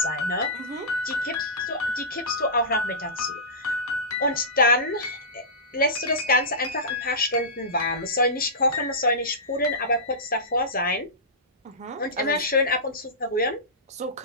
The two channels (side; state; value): both; normal; correlation -0.19